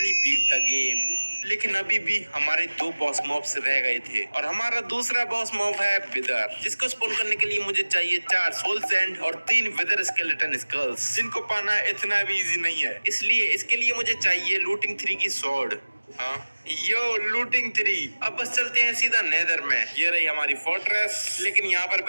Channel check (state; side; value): inverted; both; correlation -1.00